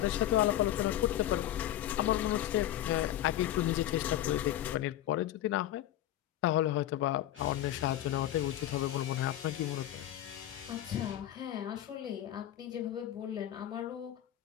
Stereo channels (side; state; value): right; quieter; 13.0 dB